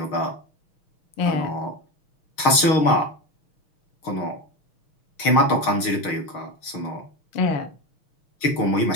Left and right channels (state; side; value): late; right; 6.4 ms